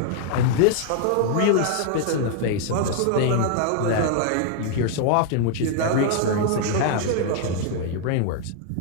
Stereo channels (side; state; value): both; different; correlation 0.00